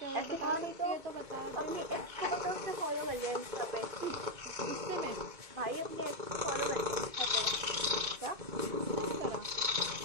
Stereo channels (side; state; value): left; late; 2.2 ms